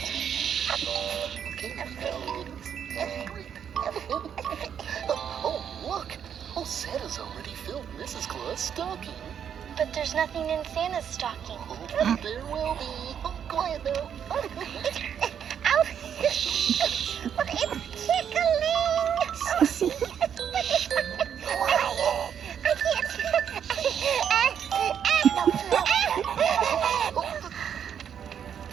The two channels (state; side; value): quieter; left; 8.4 dB